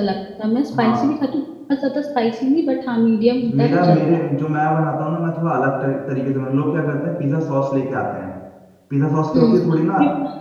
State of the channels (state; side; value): identical; both; correlation 1.00